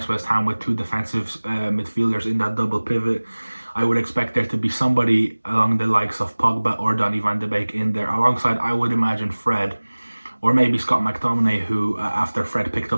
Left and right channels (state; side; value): inverted; both; correlation -1.00